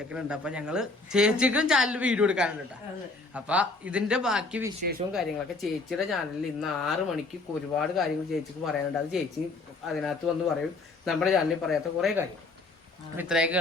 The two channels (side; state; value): right; quieter; 3.5 dB